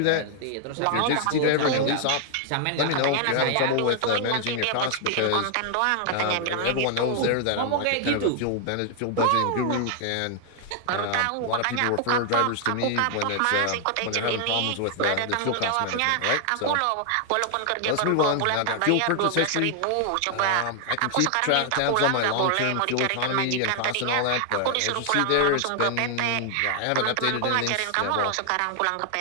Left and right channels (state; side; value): different; both; correlation 0.00